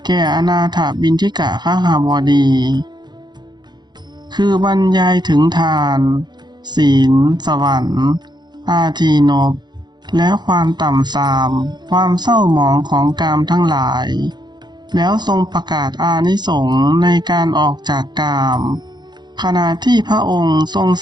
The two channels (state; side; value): late; left; 0.21 ms